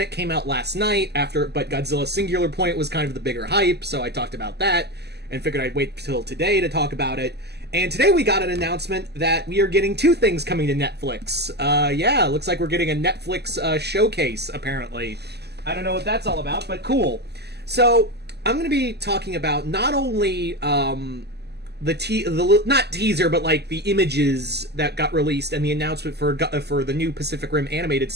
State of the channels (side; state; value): left; late; 0.48 ms